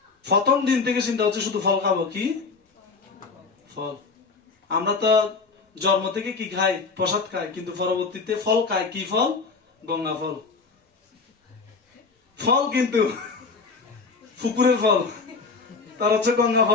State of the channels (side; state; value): right; quieter; 4.5 dB